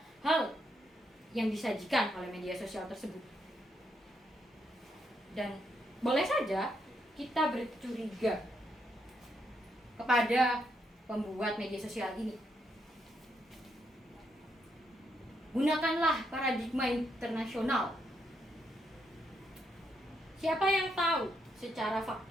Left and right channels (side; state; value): both; normal; correlation 0.78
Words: hal yang disajikan oleh media sosial tersebut. Dan boleh saja kita bercuriga kepada pembuat media sosial ini. Gunakanlah paradigma internasional. Siapa yang tahu secara